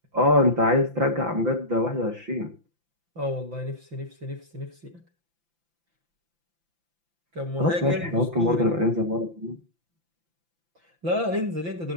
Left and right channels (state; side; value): late; left; 5.8 ms